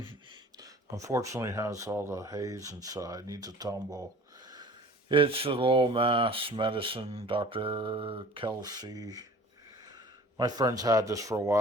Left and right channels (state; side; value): normal; both; correlation 0.46